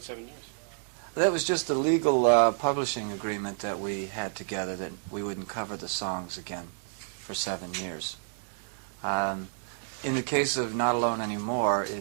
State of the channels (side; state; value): left; silent; digital silence